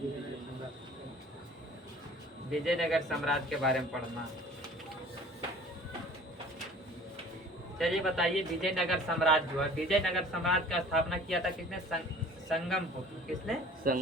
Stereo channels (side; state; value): both; normal; correlation 0.47